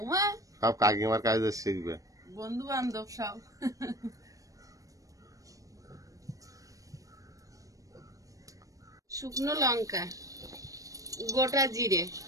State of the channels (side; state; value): left; late; 0.16 ms